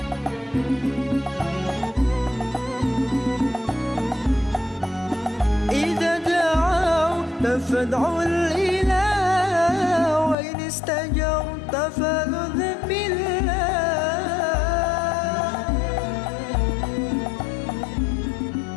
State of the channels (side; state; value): right; drops out; at 10.4 s